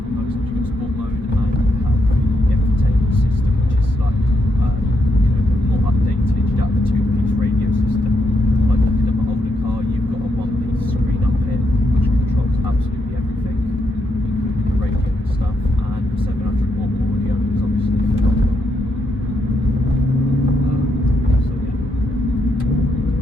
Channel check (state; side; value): normal; both; correlation 0.79